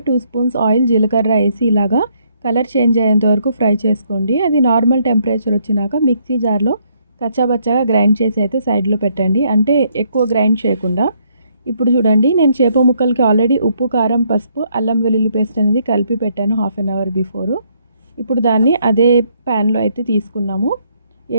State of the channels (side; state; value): both; inverted; correlation -0.70